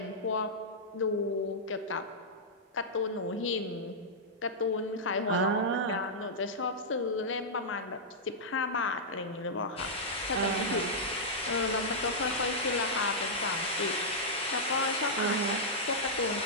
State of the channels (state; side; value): normal; both; correlation -0.10